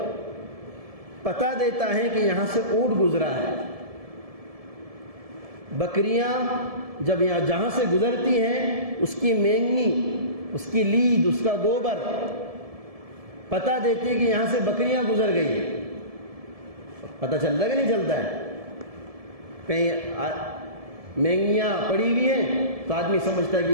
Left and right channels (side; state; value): left; late; 1.7 ms